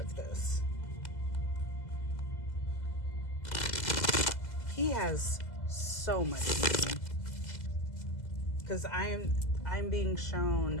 this. He has so much money. Because I'm being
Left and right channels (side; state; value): right; late; 2.0 ms